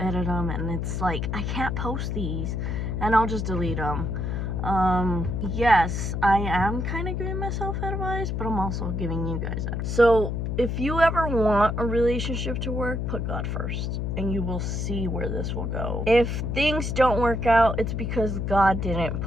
them, and it's like, I can't post these, and I'll just delete them. Yes, I am kind of giving myself advice, but I'm also giving you guys advice. So if you ever want a relationship to work, put God first, and you will see where this will go. If things don't work out, it's because God didn't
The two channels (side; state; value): left; noise; hum, 1 dB below the sound